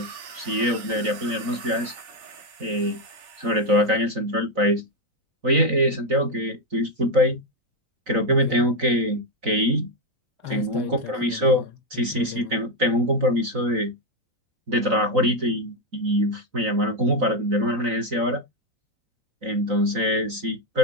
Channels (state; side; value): late; left; 3.9 ms